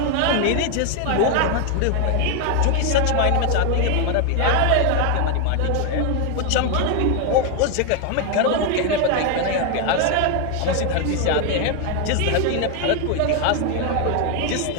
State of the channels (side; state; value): both; different; correlation 0.01